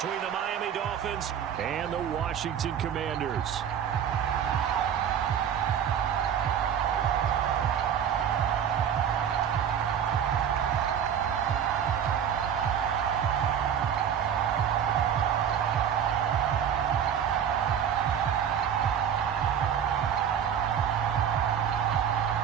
the Miami Dolphins and the Washington Commanders.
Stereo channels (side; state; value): left; quieter; 8.6 dB